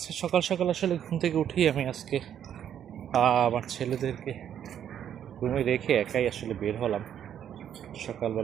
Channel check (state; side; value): quieter; left; 9.6 dB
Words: সকাল সকাল আসলে ঘুম থেকে উঠি আমি আজকে আমার ছেলেদেরকে রুমে রেখে একাই আসলে বের হলাম